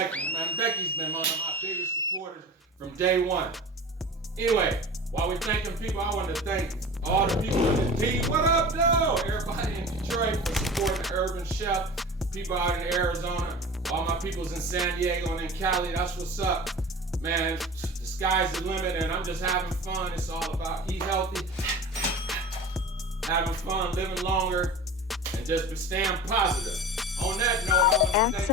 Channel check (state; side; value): normal; both; correlation 0.35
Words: man. Becky's been one of my biggest supporters from day one. Anyway, While we're thanking people, I want to thank all the people in the team. What up, though? Everybody in Detroit for supporting the Urban Chef. People out in Arizona. All my peoples in San Diego and in Cali. That's what's up. Man, the sky's the limit and I'm just having fun. It's all about eat healthy, having fun, living longer, and just staying positive. On that note, I want to